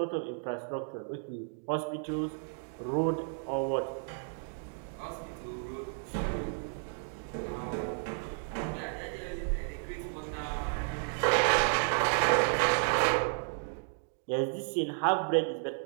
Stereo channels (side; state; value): left; silent; 56 dB below the other